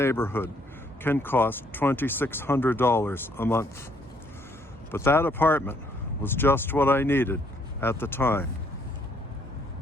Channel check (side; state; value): both; normal; correlation 0.67